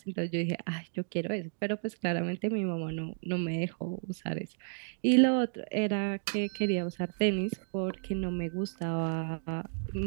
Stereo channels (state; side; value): silent; left; digital silence